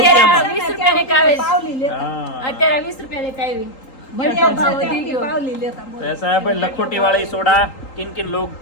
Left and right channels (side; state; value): right; late; 3.8 ms